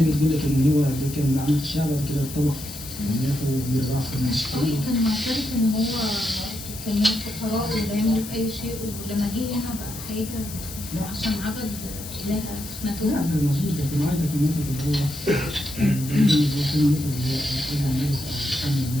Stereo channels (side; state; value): left; noise; hiss, 11 dB below the sound